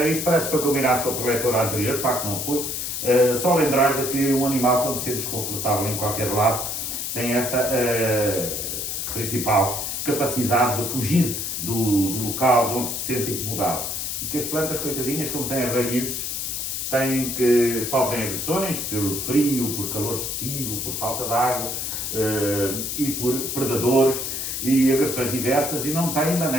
isto parece que foi combinado com a preletora anterior, de facto não foi. Só lembrar de que um animal, quando se sente desconfortável em qualquer lado, tem esta principal capacidade de fugir do local de onde se sente incomodado. E que as plantas, coitadinhas, como têm raízes, sofrem agressões por frio, por calor excessivo, por falta de água e por predadores e agressões diversas, e não têm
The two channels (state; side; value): noise; left; hiss, 3 dB below the sound